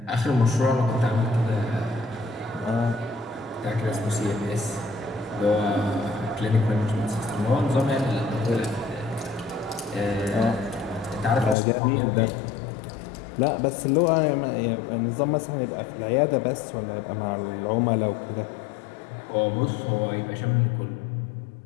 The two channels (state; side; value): drops out; right; at 11.6 s